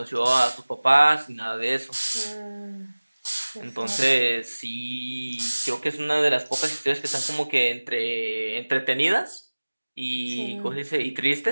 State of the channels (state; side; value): inverted; both; correlation -1.00